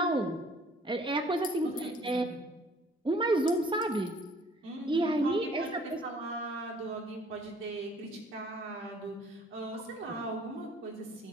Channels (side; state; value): both; normal; correlation 0.57